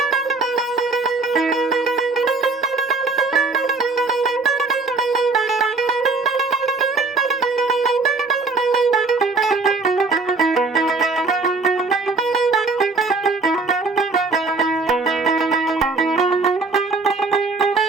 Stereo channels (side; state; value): left; quieter; 3.9 dB